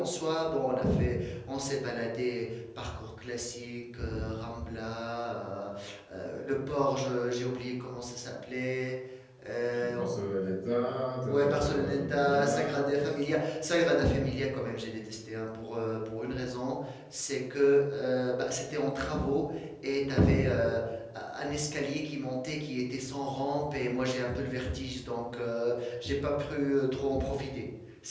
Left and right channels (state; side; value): identical; both; correlation 1.00